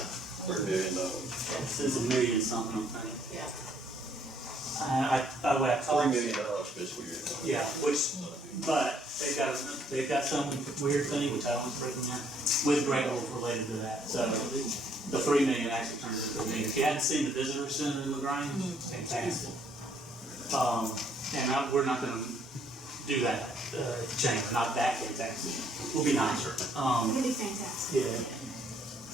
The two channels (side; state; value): both; normal; correlation 0.66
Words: $3 million. it's $1 million something, I think. Yeah. By the way, I $3 talked. million fiscal year. Yeah, but they've got some weird thing, which I don't recommend, with Great Wolf related to that. So the 3 million actually turns into $1 million. If you hadn't seen the visitor center in LaGrange, it's fantastic. And we're not gonna do that, at the chamber, not that fantastic. We'll be nicer. It'll be fantastic.